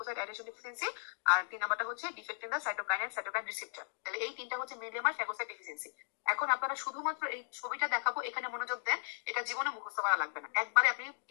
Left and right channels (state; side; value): silent; right; digital silence